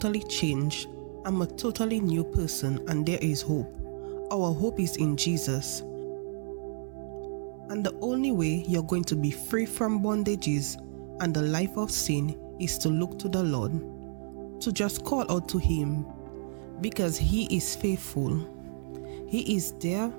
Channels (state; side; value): silent; left; 57 dB below the other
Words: changed. I'm a totally new person and there is hope. Our hope is in Jesus. And the only way you're going to be free from bondages and the life of sin is to look to the Lord, to just call out to Him, because He is faithful. He is there